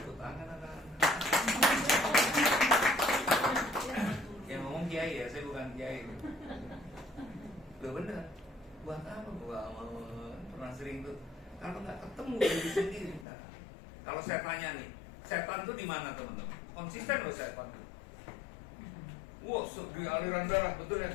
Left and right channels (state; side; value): drops out; right; at 13.2 s